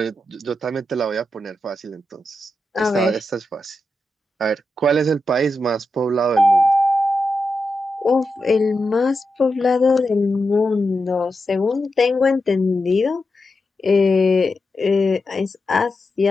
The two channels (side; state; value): both; normal; correlation 0.88